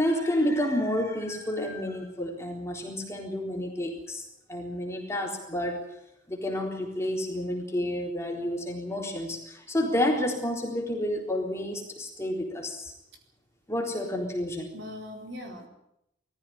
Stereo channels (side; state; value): both; normal; correlation 0.63